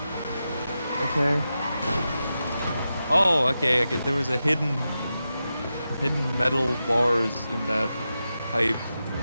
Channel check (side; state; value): both; inverted; correlation -0.90